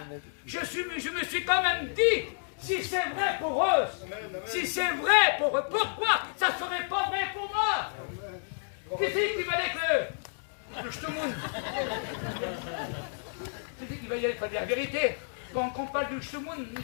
Je me suis quand même dit, si c'est vrai pour eux, si c'est vrai pour eux, pourquoi ça ne serait pas vrai pour moi? Qui c'est qui va dire le Shtemoun? Qui c'est qui va y aller? Il faut dire la vérité. Quand on parle du Shtemoun,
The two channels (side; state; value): right; silent; digital silence